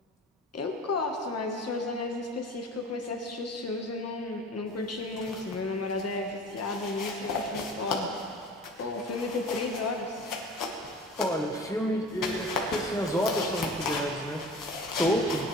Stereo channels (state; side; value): normal; both; correlation 0.40